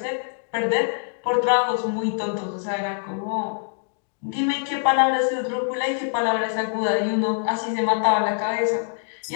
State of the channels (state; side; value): silent; right; digital silence